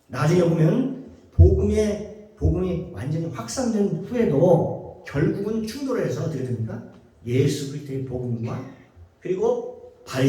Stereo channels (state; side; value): identical; both; correlation 1.00